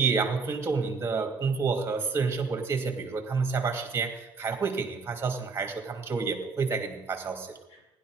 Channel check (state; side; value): quieter; left; 4.6 dB